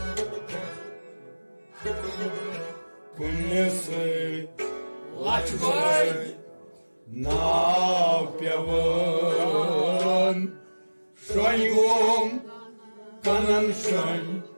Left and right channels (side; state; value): both; inverted; correlation -1.00